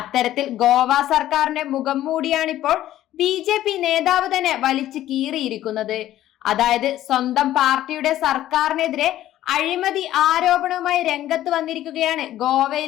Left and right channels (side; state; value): right; quieter; 13.4 dB